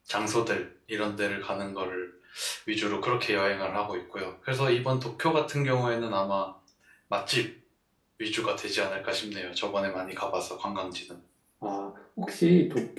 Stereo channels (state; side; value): identical; both; correlation 1.00